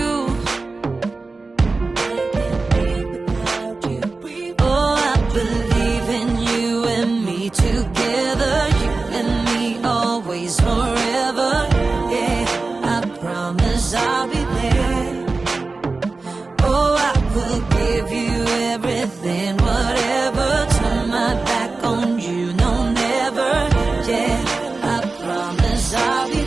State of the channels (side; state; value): left; quieter; 3.7 dB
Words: Oh, I believe in you and me together, you and me always forever. Yeah, I promise I'll be there. Oh, I will give you everything, whatever. Turn my back on you, no, never. Yeah, I promise I'll be